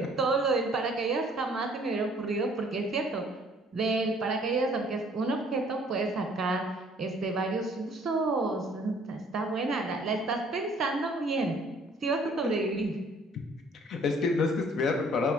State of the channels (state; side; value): normal; both; correlation 0.58